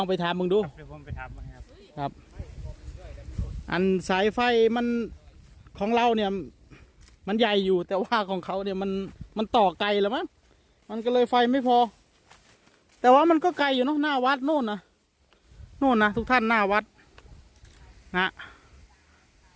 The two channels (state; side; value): identical; both; correlation 1.00